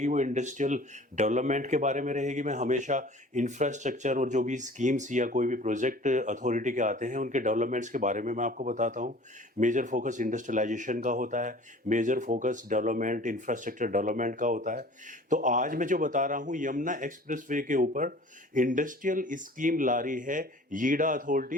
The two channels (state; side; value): normal; both; correlation 0.47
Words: वो इंडस्ट्रियल डेवलपमेंट के बारे में रहेगी। मैं हमेशा इंफ्रास्ट्रक्चर और जो भी स्कीम्स या कोई भी प्रोजेक्ट अथॉरिटी के आते हैं उनके डेवलपमेंट्स के बारे में मैं आपको बताता हूँ। मेजर फोकस इंडस्ट्रियलाइजेशन का होता है, major focus development infrastructure development का होता है। तो आज मैं जो बता रहा हूँ यमुना एक्सप्रेस वे के ऊपर इंडस्ट्रियल स्कीम ला रही है यीडा